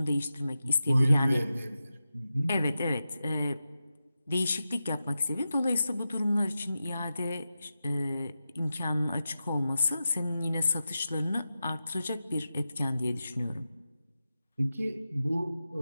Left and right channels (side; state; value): both; inverted; correlation -0.92